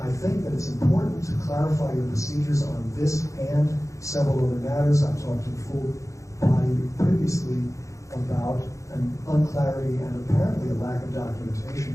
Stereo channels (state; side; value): late; right; 0.15 ms